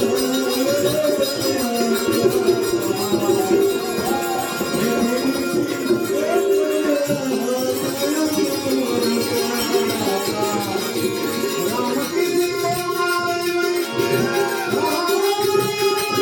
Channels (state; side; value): identical; both; correlation 1.00